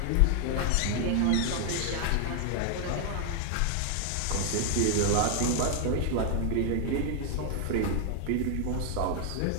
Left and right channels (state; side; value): different; both; correlation 0.00